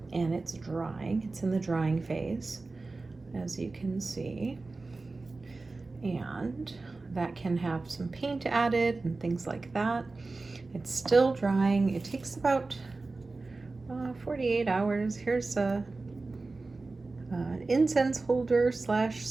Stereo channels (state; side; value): quieter; left; 3.6 dB